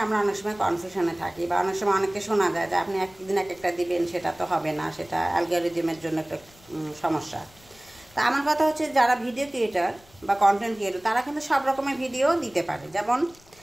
আমরা অনেক সময় কনফিউশনে থাকি বা অনেক সময় অনেকে শোনা যায় যে আপনি একদিন এক একটা দিবেন, সেটা তো হবে না, সেটা অ্যালগরিদমের জন্য একটা সমস্যা। তা আমার কথা হচ্ছে, যারা ভিডিও ক্রিয়েটার বা কন্টেন্ট ক্রিয়েটর তারা কিন্তু সব রকমের ভিডিও দিতে পারে। যেমন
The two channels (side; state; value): left; noise; rumble, 26 dB below the sound